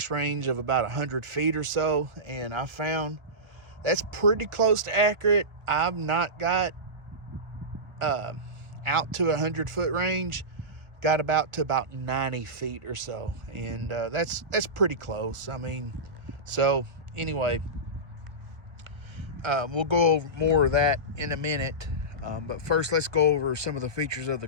range of about 100 feet or so, and I found that's pretty close to accurate. I've not got out to 100-foot range, got about 90 feet or so, and that's pretty close. I mean, so anyway, we'll go over more of that in a minute. But first, let's go over some of the features of the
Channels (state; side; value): late; left; 1.0 ms